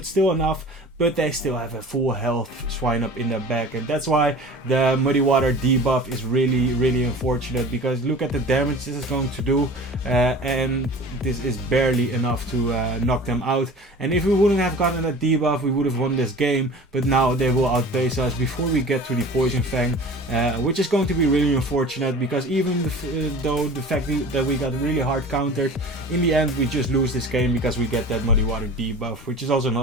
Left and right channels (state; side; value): normal; both; correlation 0.40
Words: still enough. But they still have a full health Swinub in their back, and that's why the Muddy Water debuff is really unfortunate, because look at the damage this is going to do, and this is barely enough to knock them out. And if we wouldn't have gotten that debuff, we would have won this game, but now they will outpace us before we get to the Poison Fang, which is going to be really unfortunate, because even though the fact that we got really hard countered, in the end we just lose this game because we get that Muddy Water debuff, which is also